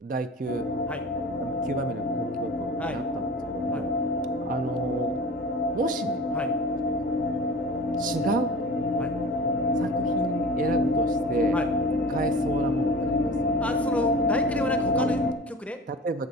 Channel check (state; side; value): normal; both; correlation 0.38